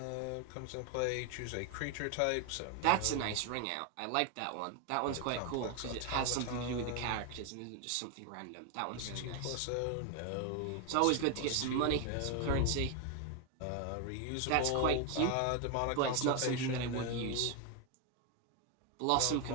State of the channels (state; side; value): different; both; correlation 0.01